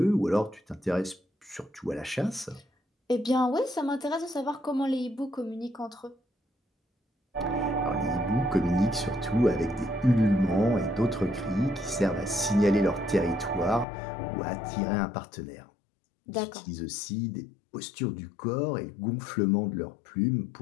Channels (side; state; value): right; drops out; at 13.9 s